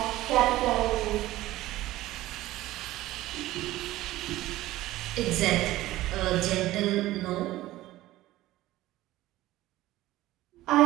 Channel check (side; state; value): left; quieter; 16.3 dB